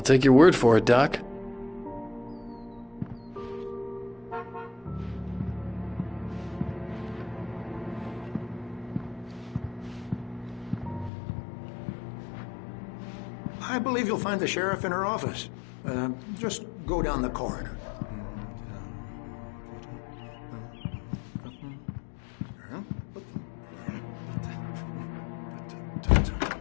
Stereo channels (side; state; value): right; drops out; at 11.1 s